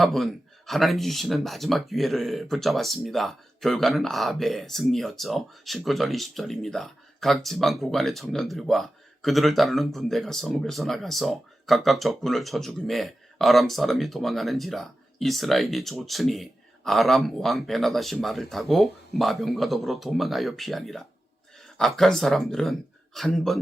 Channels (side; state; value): both; normal; correlation 0.93